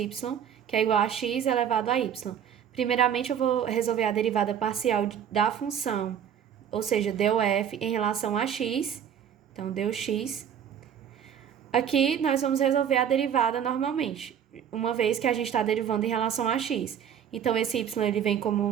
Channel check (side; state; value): left; quieter; 8.8 dB